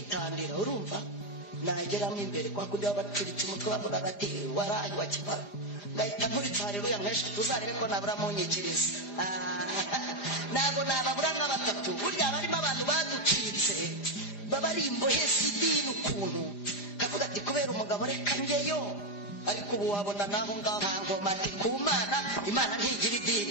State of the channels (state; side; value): late; right; 4.9 ms